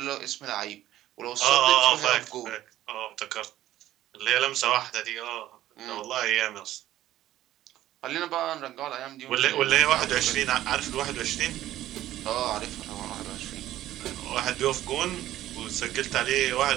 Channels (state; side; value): quieter; left; 13.8 dB